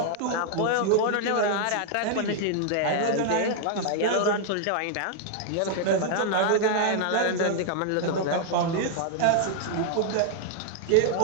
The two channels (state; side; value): different; both; correlation 0.00